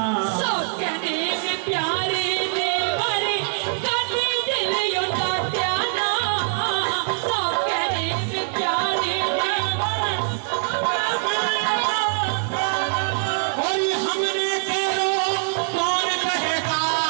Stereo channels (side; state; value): left; silent; 63 dB below the other